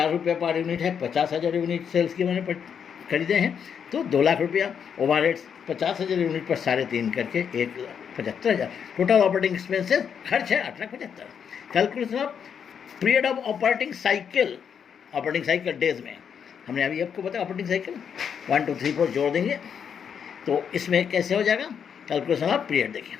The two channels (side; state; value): right; quieter; 7.5 dB